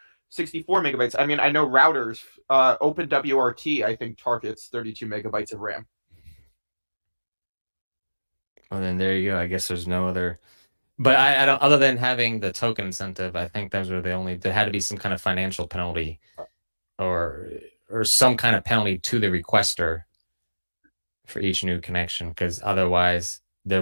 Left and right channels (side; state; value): both; inverted; correlation -1.00